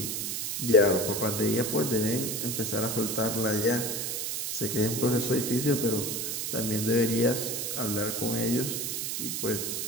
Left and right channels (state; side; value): noise; right; hiss, 2 dB below the sound